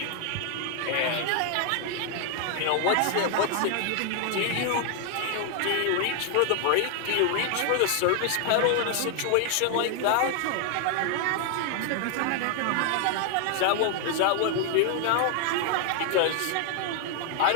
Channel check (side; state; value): both; different; correlation 0.00